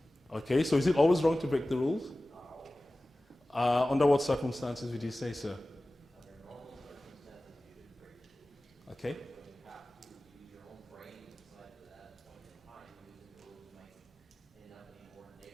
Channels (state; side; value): normal; both; correlation 0.97